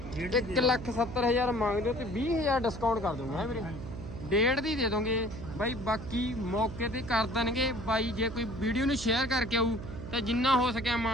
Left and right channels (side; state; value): right; noise; hum, 10 dB below the sound